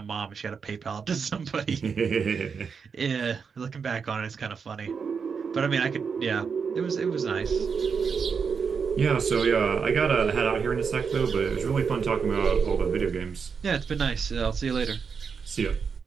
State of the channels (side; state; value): left; quieter; 5.9 dB